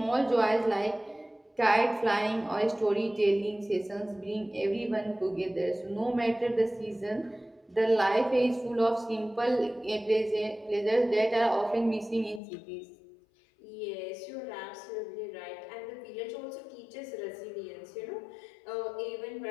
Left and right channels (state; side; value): drops out; right; at 12.4 s